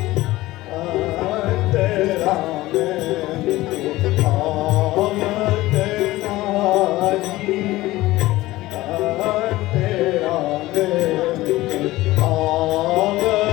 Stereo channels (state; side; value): quieter; right; 17.8 dB